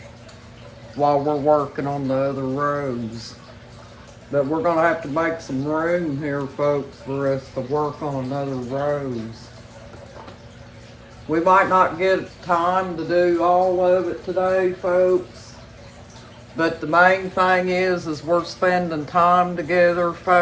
while we're working on the other rose. But we're going to have to make some room here, folks, for us to work on another rose. We might not get time to do all of it today, folks. But the main thing is we're spending time together,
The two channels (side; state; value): both; identical; correlation 1.00